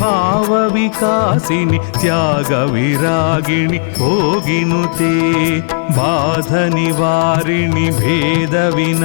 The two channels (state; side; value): silent; right; digital silence